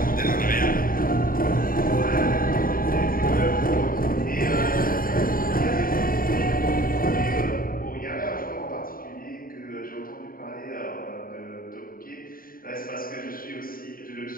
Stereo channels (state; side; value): late; right; 0.41 ms